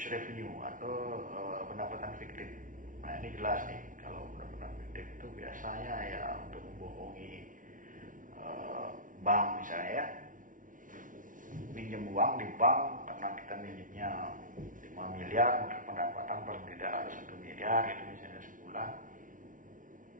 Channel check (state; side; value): late; left; 0.38 ms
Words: revenue atau pendapatan fiktif. Nah ini jelas nih, kalau pendapatan fiktif itu biasanya ya untuk membohongi bank misalnya ya, pinjam uang di bank karena kita minjemnya 5 miliar, maka pendapatan paling tidak harus 1 miliar itu misalnya sebulan.